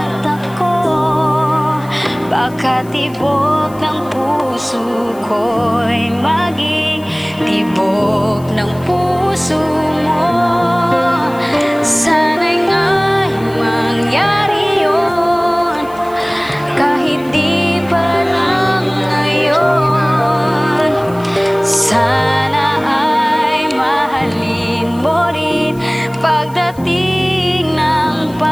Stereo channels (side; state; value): left; noise; hiss, 24 dB below the sound